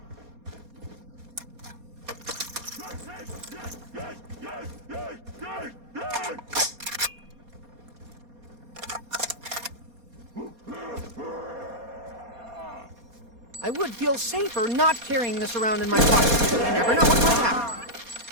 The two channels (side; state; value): left; late; 4.2 ms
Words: I would feel safer not carrying this around in my pocket. You never know what might happen.